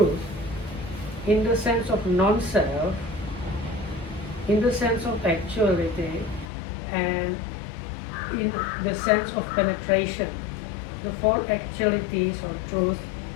in the sense of non-self, in the sense of actuality, and in the sense of penetration, the four actualities or truth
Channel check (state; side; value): drops out; right; at 6.5 s